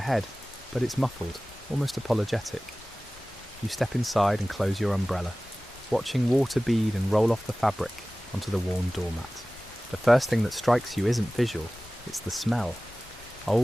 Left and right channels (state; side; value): normal; both; correlation 0.97